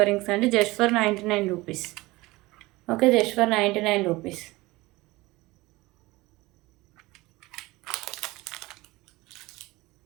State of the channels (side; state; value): left; quieter; 20.8 dB